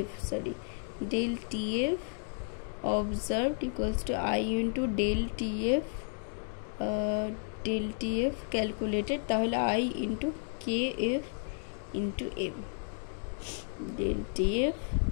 observed equals to I into del TF calculated, তাহলে I into KF into M, del TF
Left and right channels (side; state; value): right; silent; digital silence